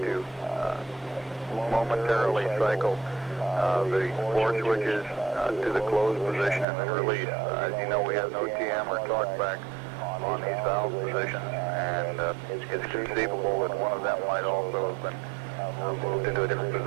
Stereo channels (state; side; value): drops out; left; at 6.7 s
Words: momentarily cycle the 4 switches to the closed position and then release. As you know, we have no TM or talkback on these valve positions, and it's conceivable that one of them might also have been moved into a different